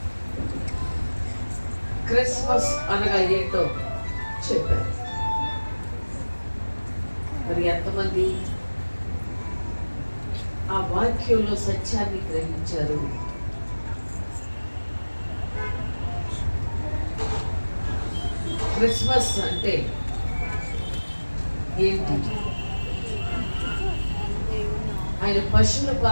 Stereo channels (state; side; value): inverted; both; correlation -1.00